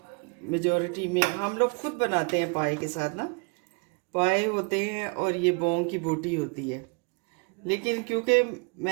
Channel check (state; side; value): quieter; left; 33.6 dB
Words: मेजॉरिटी में हम लोग खुद बनाते हैं। पाए के साथ ना पाए होते हैं और ये बोंग की बोटी होती है। लेकिन क्योंकि